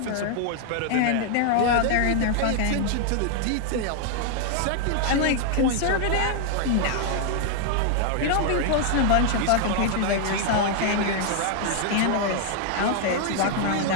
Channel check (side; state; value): both; different; correlation 0.00